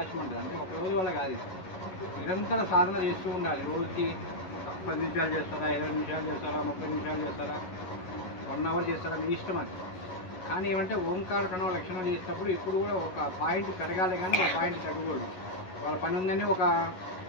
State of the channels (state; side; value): late; right; 11 ms